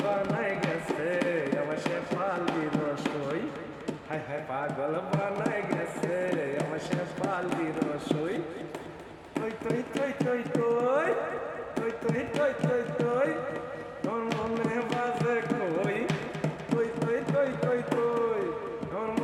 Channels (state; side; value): identical; both; correlation 1.00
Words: বানাই গেছে আমার শেফালি রসই হায় হায় পাগল বানাই গেছে আমার শেফালি রসই কই কই কই কই কই কই কই কই কই কই আমার মনে বাজে কই কই কই কই কই কই আমার